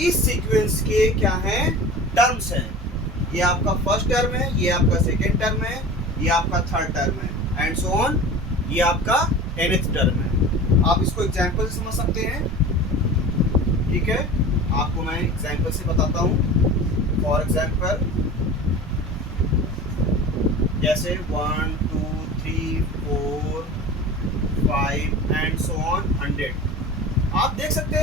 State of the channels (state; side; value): normal; both; correlation 0.36